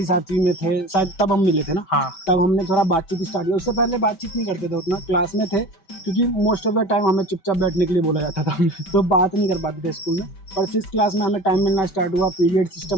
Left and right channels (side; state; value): right; late; 5.2 ms